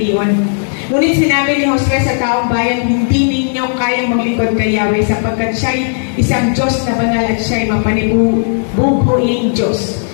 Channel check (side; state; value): right; silent; digital silence